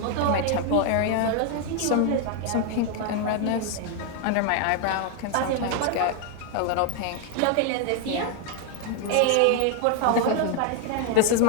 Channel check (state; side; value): different; both; correlation 0.00